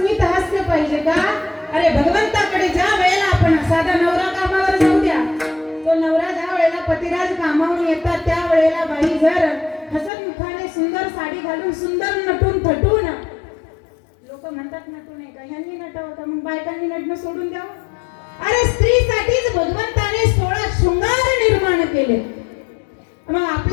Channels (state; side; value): drops out; right; at 10.1 s